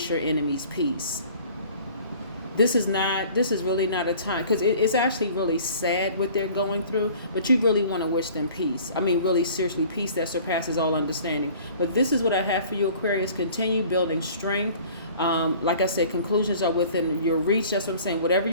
your enemies peace. this is really not a time, because it's actually really sad what they're going through, but you really want to wish them peace. I mean, really seriously, peace that surpasses all understanding. But this is what I have for you, Aquarius. Continue building strength. Like I said, conclusions are within your reach. That's what I'm saying. Whatever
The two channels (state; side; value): inverted; both; correlation -0.49